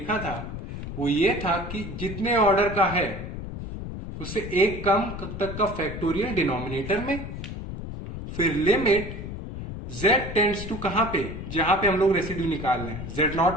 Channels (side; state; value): left; noise; rumble, 8 dB below the sound